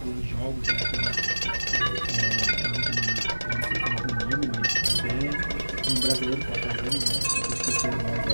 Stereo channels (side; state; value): both; inverted; correlation -1.00